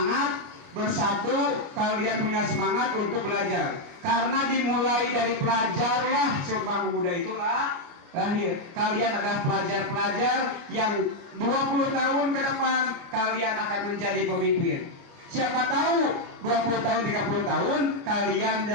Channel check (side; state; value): left; late; 28 ms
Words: bersatu. Kalian punya semangat untuk belajar. Karena dimulai dari pelajarlah Sumpah Pemuda itulah lahir. Kalian adalah pelajar-pelajar yang 20 tahun ke depan kalian akan menjadi pemimpin. Siapa tahu 20 tahun, 30 tahun kalian